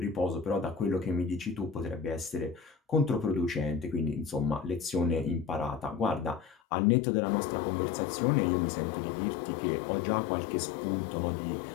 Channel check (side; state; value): right; drops out; at 6.6 s